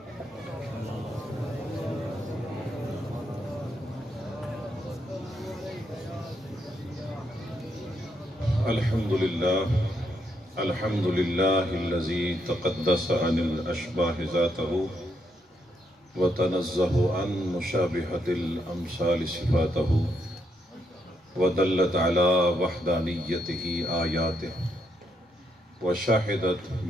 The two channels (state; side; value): normal; both; correlation 0.78